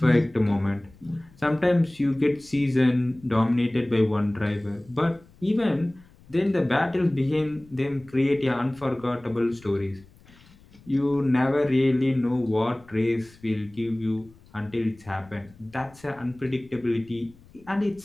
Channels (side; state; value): left; noise; rumble, 26 dB below the sound